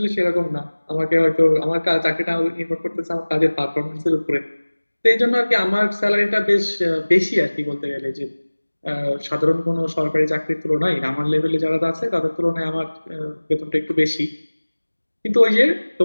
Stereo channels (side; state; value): both; inverted; correlation -1.00